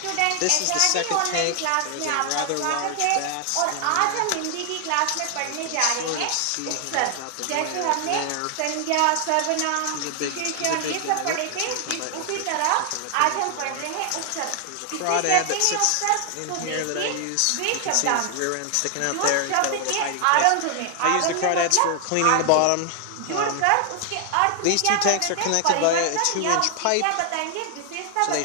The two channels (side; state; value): both; different; correlation 0.00